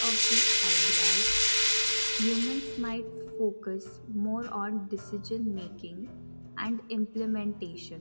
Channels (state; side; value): inverted; both; correlation -1.00